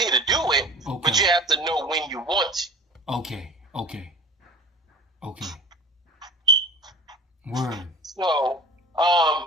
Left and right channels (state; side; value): normal; both; correlation 0.39